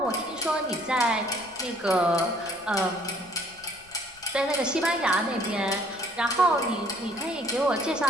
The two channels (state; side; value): noise; left; rumble, 27 dB below the sound